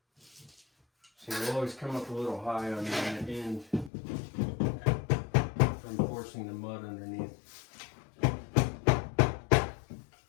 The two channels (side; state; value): right; drops out; at 3.9 s